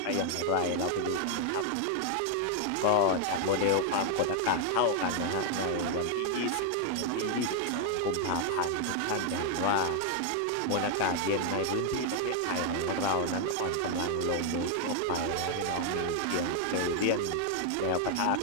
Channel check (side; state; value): both; different; correlation 0.00